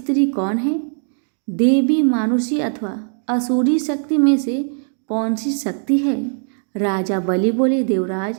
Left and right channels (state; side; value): silent; left; 55 dB below the other